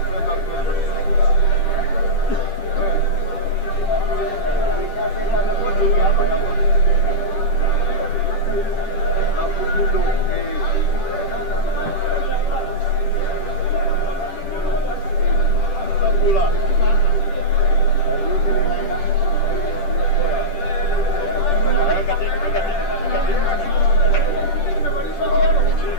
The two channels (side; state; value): right; late; 10 ms